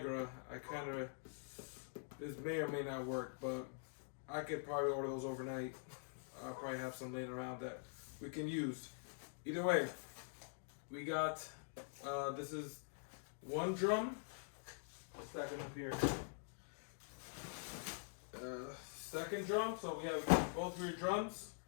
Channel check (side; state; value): right; silent; digital silence